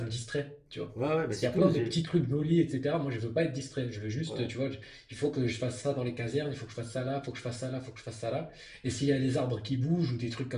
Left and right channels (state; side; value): identical; both; correlation 1.00